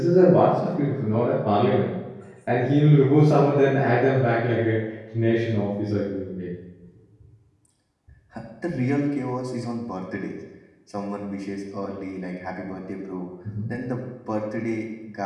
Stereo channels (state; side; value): identical; both; correlation 1.00